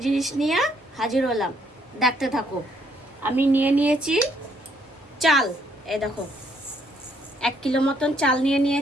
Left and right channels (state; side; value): normal; both; correlation 0.69